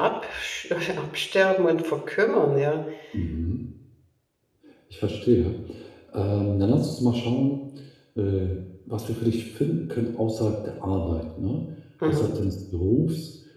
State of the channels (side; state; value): both; identical; correlation 1.00